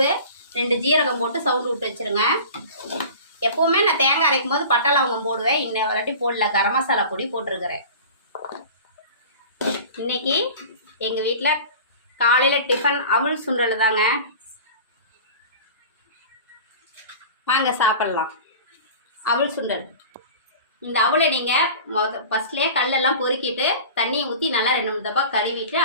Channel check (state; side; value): inverted; both; correlation -0.38